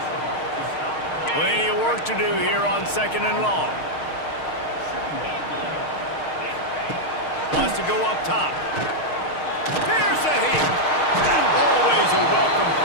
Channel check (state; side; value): late; right; 6.5 ms